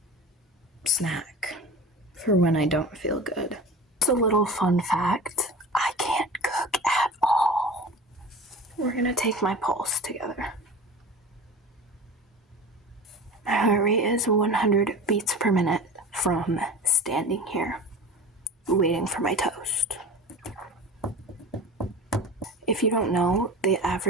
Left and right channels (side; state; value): both; normal; correlation 0.35